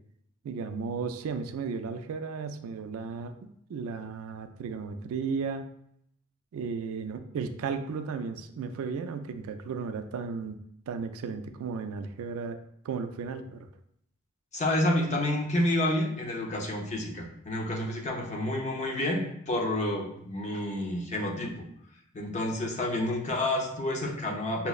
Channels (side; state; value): both; normal; correlation 0.40